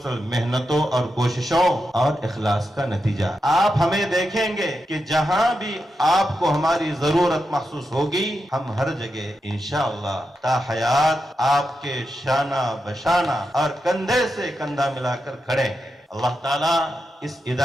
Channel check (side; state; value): both; normal; correlation 0.87